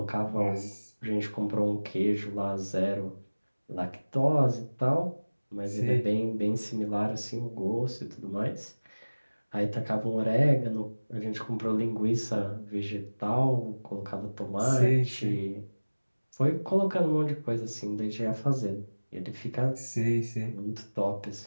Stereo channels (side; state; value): both; inverted; correlation -1.00